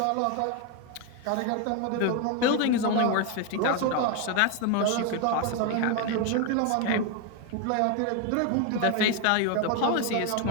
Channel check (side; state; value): both; different; correlation 0.01